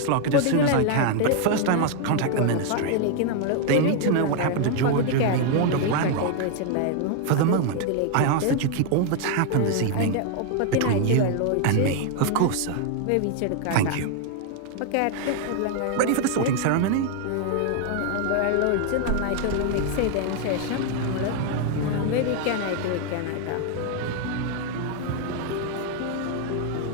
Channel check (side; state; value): both; different; correlation 0.00